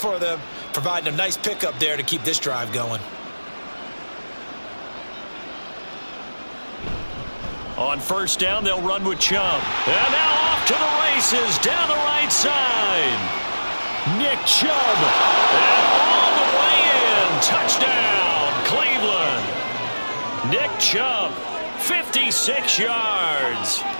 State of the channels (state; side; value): inverted; both; correlation -1.00